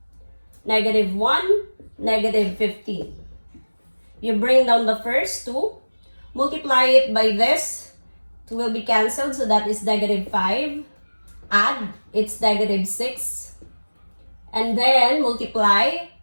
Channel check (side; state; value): both; inverted; correlation -1.00